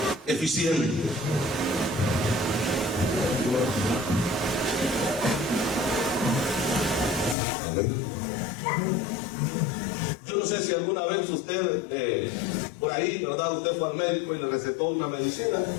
eficiente. Amén. Yo no sé si alguna vez usted, por ahí, ¿verdad? Usted fue al médico y le recetó una medicina.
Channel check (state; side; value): drops out; right; at 7.4 s